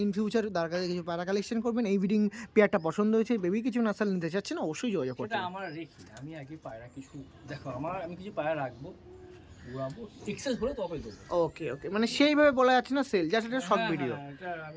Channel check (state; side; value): identical; both; correlation 1.00